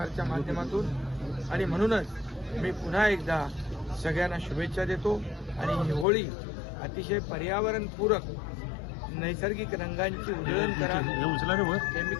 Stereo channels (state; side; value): drops out; right; at 6.1 s